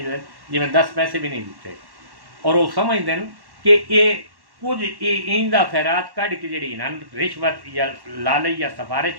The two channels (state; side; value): late; left; 1.1 ms